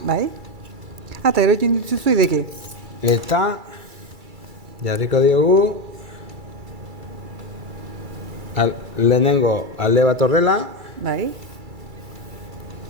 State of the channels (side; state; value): left; late; 2.3 ms